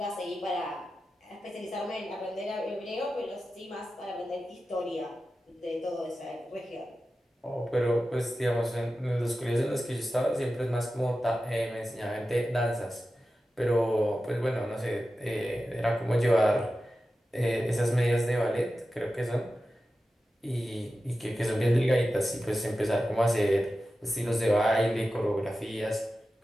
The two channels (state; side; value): normal; both; correlation 0.93